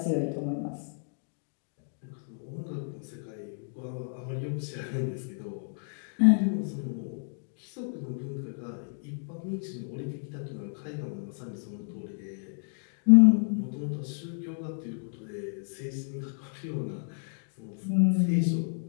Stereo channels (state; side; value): silent; right; digital silence